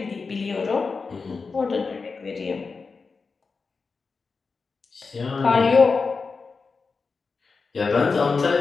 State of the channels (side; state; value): right; quieter; 4.6 dB